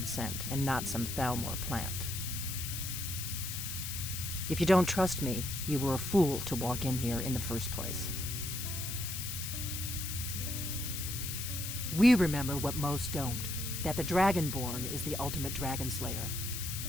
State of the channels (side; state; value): left; noise; hiss, 5 dB below the sound